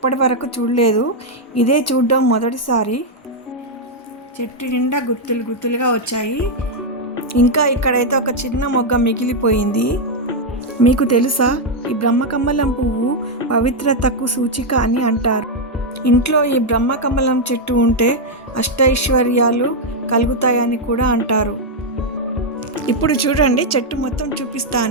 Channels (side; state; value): both; normal; correlation 0.00